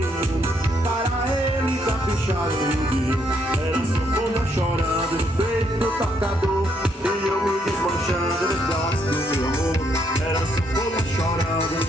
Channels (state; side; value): normal; both; correlation 0.73